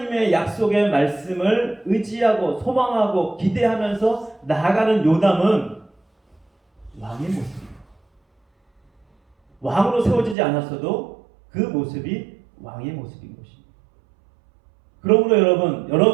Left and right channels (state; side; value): drops out; left; at 10.4 s